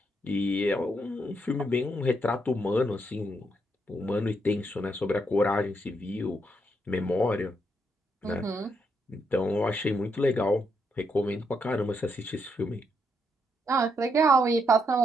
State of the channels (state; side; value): normal; both; correlation 0.78